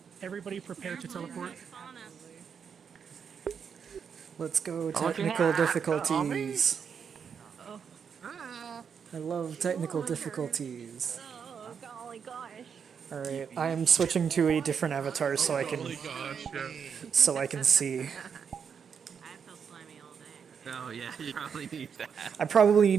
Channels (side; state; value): left; quieter; 6.9 dB